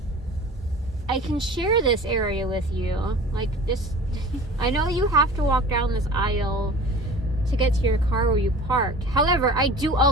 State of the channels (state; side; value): normal; both; correlation 0.41